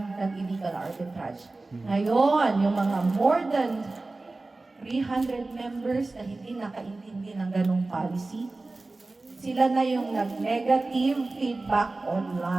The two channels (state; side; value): quieter; left; 3.3 dB